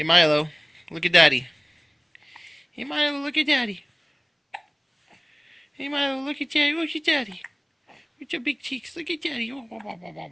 Milo. Look at Daddy. Hey, Milo, look at Daddy. Hey, Milo, look at Daddy. Look at Daddy. With your big cheeks. Look at Daddy.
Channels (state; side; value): identical; both; correlation 1.00